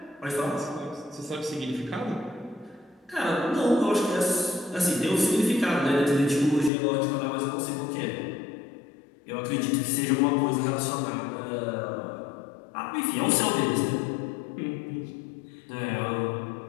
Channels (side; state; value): right; drops out; at 6.7 s